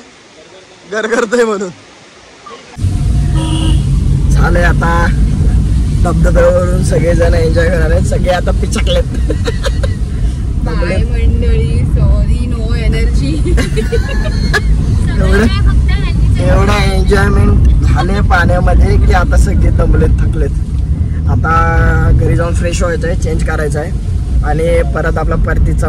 घर करतोय म्हणून. झालंय आता धबधब्यावरून सगळेजण एन्जॉय करणार आहेत. सगळे आता पिचकलेत. बाय मंडळी, सॉरी नो एनर्जी. एवढा एन्जॉयमेंट झाले पाण्यामध्ये की आता सगळे दमलेत, थकलेत. आता घरी जाऊन फ्रेश व्हायचं आहे, चेंज करायचं आहे आणि परत आपला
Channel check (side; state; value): both; identical; correlation 1.00